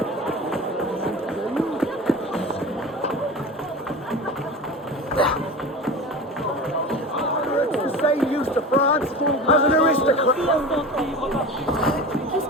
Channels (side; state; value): both; normal; correlation 0.32